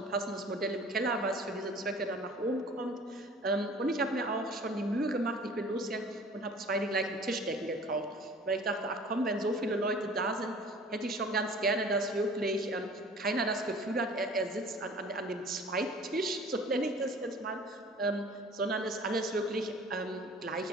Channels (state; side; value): normal; both; correlation 0.47